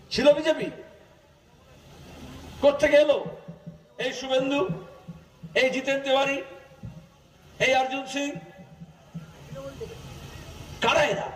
ছিল বিজেপি? কোত্থেকে এলো? এই শুভেন্দু, এই জিতেন তিওয়ারি, এই অর্জুন সিং, কারা এরা?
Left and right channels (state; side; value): identical; both; correlation 1.00